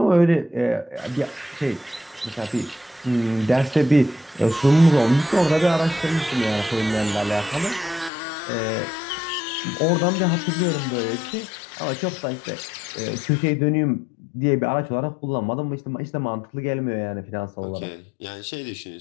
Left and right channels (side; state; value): right; drops out; at 8.1 s